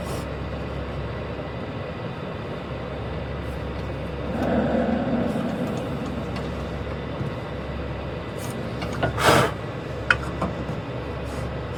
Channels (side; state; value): left; noise; rumble, 22 dB below the sound